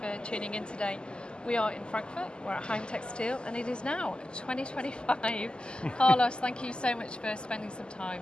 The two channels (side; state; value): right; late; 0.049 ms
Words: tuning in today. We are in Frankfurt, we're at Heimtextil, and it is now 2025. Carlos, thank you so much for spending some time